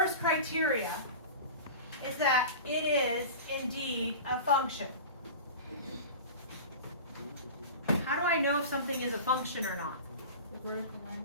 criteria is that it is indeed a function. How do I know if something is a function or not?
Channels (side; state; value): both; inverted; correlation -0.33